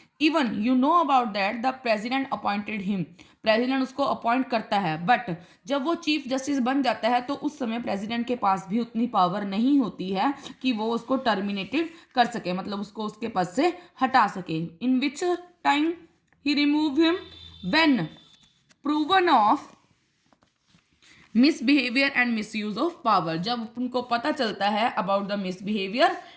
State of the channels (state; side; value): identical; both; correlation 1.00